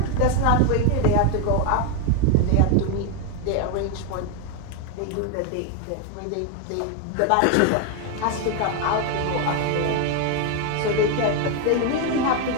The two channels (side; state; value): both; different; correlation 0.01